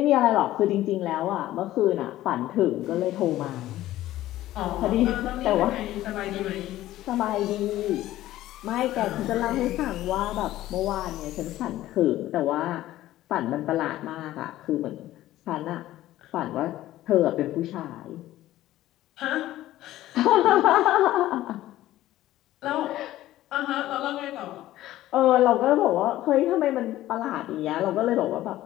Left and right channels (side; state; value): right; quieter; 14.8 dB